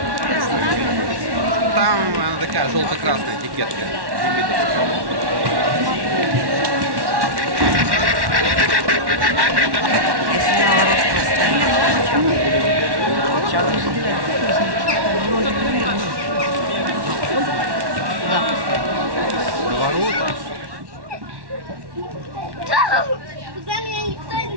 Там она такая желто-красная этикетка. Куда меня никто не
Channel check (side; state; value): left; late; 1.1 ms